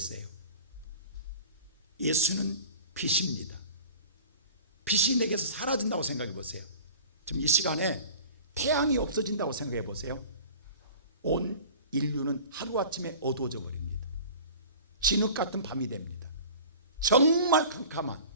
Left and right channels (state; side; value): inverted; both; correlation -0.42